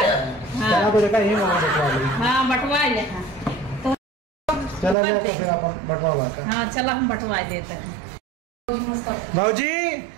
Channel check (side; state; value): left; drops out; at 5.0 s